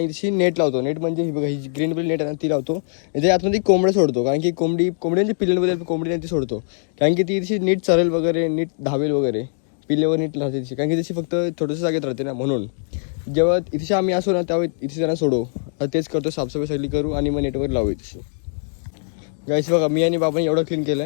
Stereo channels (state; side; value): silent; right; digital silence